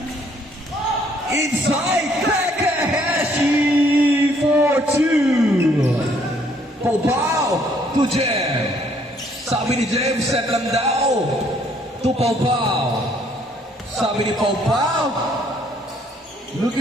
Inside Takahashi for 2. Pau to Jem. Sabi ni Jem, set lang daw. To Pau. Sabi ni Pau,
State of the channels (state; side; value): normal; both; correlation 0.65